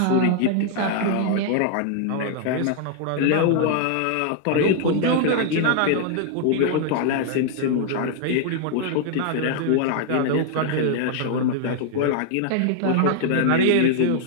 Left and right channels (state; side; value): different; both; correlation 0.00